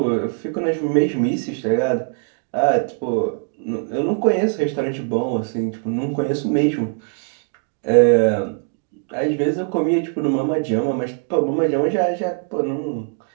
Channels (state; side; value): silent; left; 56 dB below the other